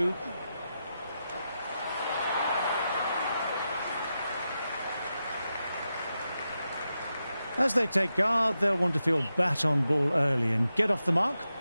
As they take guard, they'll want to feel bat on ball early and get off the mark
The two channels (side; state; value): both; inverted; correlation -0.89